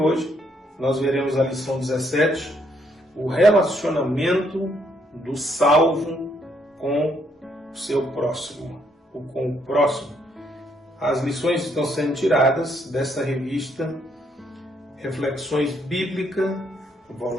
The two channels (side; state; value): both; normal; correlation 0.72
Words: nós veremos a lição 17, o relacionamento do salvo com o seu próximo, ou com o próximo. As lições estão sendo tiradas desta revista Reflexões Bíblicas,